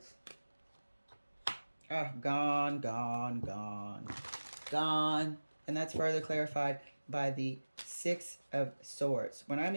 Oh, gone, gone, gone. Gone. And that's further clarified by the Six of Swords. When I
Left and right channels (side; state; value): both; inverted; correlation -1.00